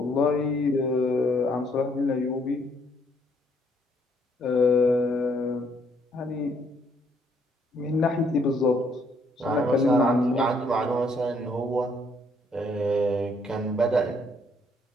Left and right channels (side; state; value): both; normal; correlation 0.68